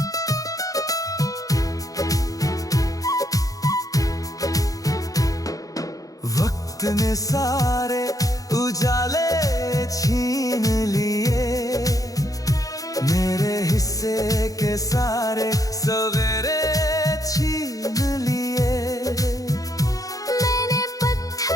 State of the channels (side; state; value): right; late; 0.17 ms